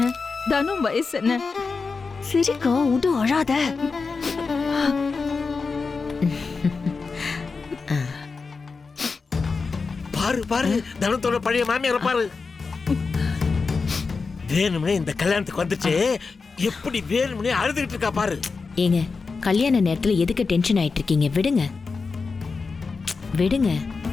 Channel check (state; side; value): quieter; right; 4.6 dB